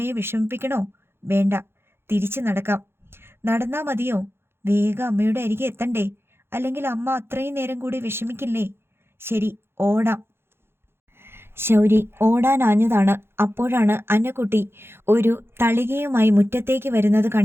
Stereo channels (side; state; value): left; late; 0.11 ms